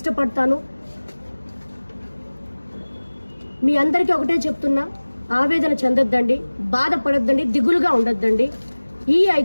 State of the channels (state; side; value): inverted; both; correlation -1.00